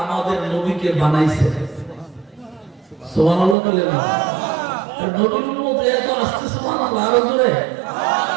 আমাদের নবীকে বানাইছেন। সুবহানাল্লাহ বলেন না? নবীর উম্মত এত আসছে সুবহানাল্লাহ, আরো জোরে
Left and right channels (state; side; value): drops out; left; at 3.6 s